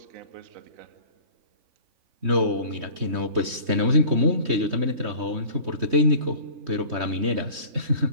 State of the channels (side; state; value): left; late; 3.2 ms